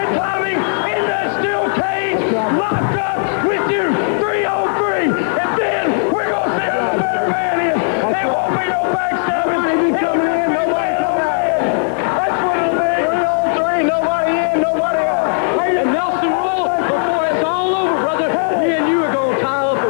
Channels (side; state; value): right; silent; digital silence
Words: Tommy in that steel cage, locked up with you, 3 on 3, and then we're going to see who the better man is. There won't be no backstabbing. Nobody coming in, nobody coming in. That's what it'll be. 3 on 3, nobody in, nobody out. And Nelson Royal, before it's all over, brother, me and you are going to tie up